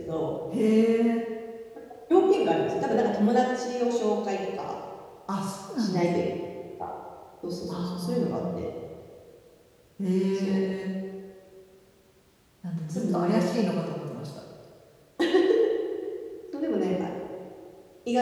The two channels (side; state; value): both; identical; correlation 1.00